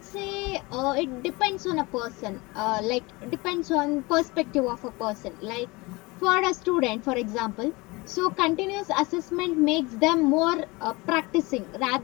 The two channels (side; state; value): right; quieter; 24.1 dB